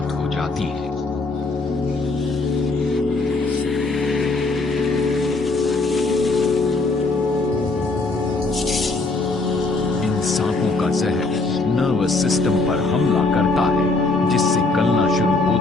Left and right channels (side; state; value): right; quieter; 3.4 dB